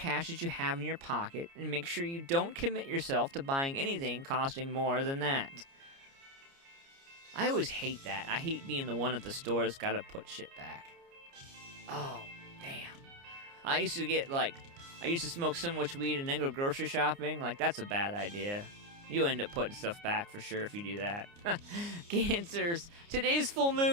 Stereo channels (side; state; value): left; late; 29 ms